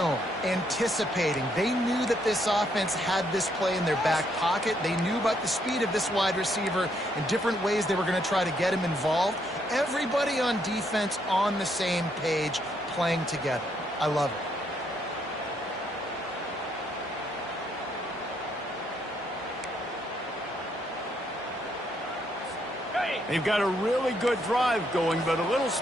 anticipating. They knew that this offense had this play in their back pocket. They knew about the speed of this wide receiver and different ways they were going to try to get him involved. Everybody on defense on the same page, playing together. I love it. They've got a really good drive going, but a little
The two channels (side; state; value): both; normal; correlation 0.73